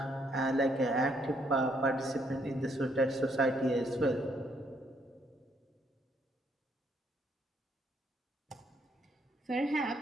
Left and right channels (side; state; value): both; normal; correlation 0.71